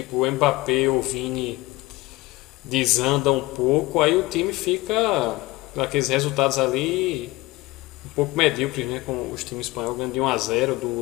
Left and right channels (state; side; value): quieter; right; 20.7 dB